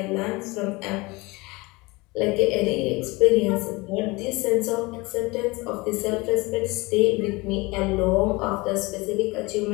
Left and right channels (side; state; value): right; quieter; 23.9 dB